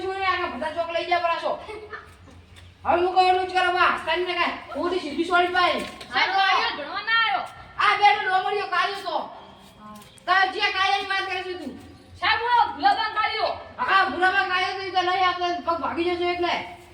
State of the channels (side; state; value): both; identical; correlation 1.00